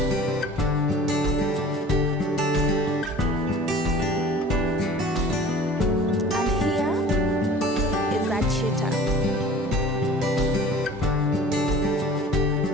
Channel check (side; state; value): both; normal; correlation 0.44